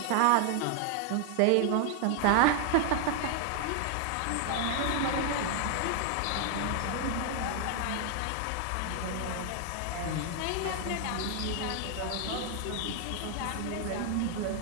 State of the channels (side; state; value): both; different; correlation 0.00